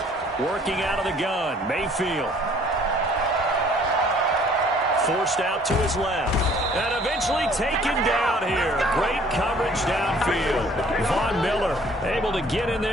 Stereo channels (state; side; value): normal; both; correlation 0.57